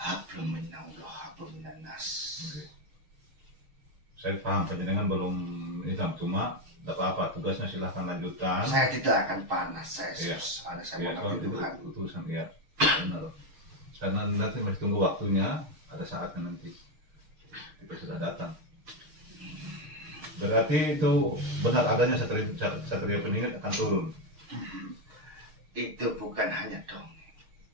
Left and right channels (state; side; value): late; left; 6.5 ms